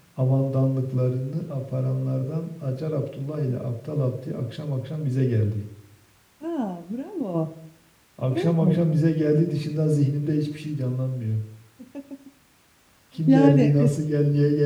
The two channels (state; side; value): identical; both; correlation 1.00